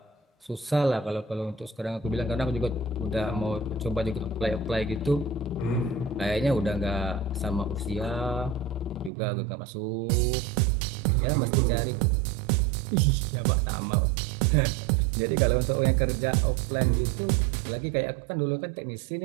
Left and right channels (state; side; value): drops out; left; at 9.1 s